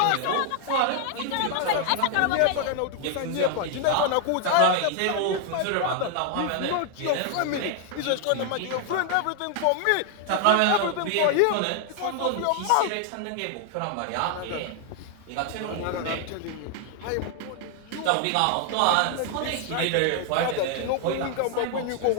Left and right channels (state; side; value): different; both; correlation 0.00